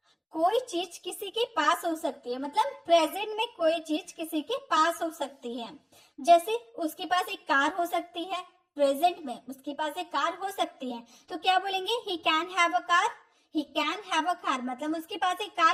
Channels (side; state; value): both; identical; correlation 1.00